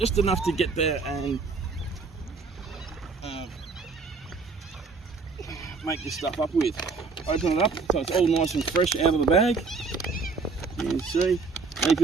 enough to get there and make this stuff up with. Open it up so it's all nice and fresh out of the bag. You can see. And if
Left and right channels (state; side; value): quieter; left; 4.5 dB